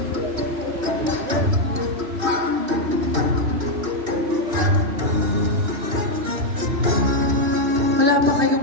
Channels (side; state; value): left; late; 3.0 ms